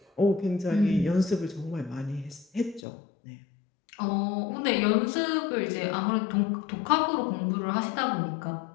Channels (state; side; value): drops out; right; at 2.8 s